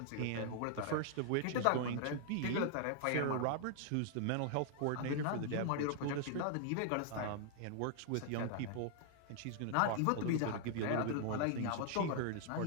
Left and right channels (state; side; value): different; both; correlation -0.01